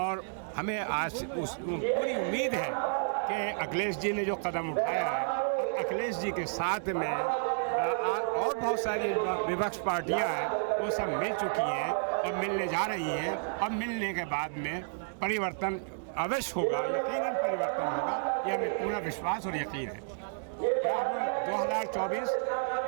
हमें आज पूरी उम्मीद है कि अखिलेश जी ने जो कदम उठाया है, अखिलेश जी के साथ में और बहुत सारी विपक्ष पार्टियां हैं, वो सब मिल चुकी हैं और मिलने जा रही हैं। और मिलने के बाद में परिवर्तन अवश्य होगा, यकीनन परिवर्तन होगा, यह हमें पूरा विश्वास और यकीन है। 2024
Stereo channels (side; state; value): left; silent; 57 dB below the other